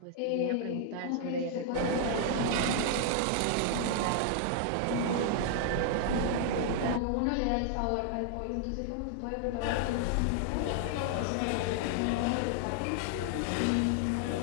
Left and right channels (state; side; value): different; both; correlation 0.00